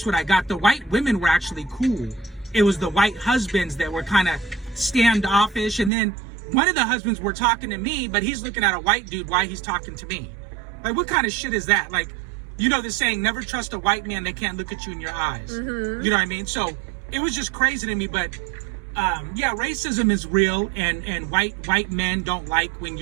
what I got. The white women were actually cool. It was the white husbands that were kind of standoffish. And then one of the husbands were talking to me, but he's looking at a white dude while he's talking to me. Like, what kind of shit is that? Like, you know the saying, never trust a white man, they can't look at you in your eyes. You know what I mean? So it was just crazy to me. But yeah, racism is real, and white men don't like when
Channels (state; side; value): drops out; left; at 5.9 s